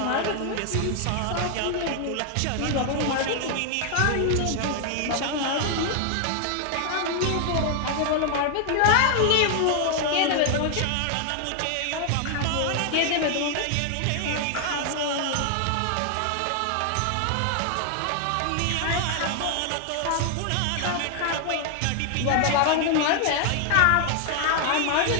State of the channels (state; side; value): different; both; correlation 0.00